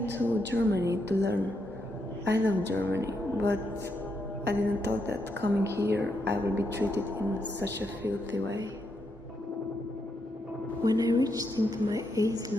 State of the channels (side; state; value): both; normal; correlation 0.80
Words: to Germany to learn. I love Germany, but I didn't thought that coming here I will be treated in such a filthy way. When I reached into my